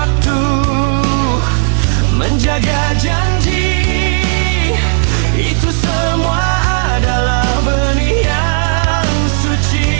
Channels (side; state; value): left; silent; digital silence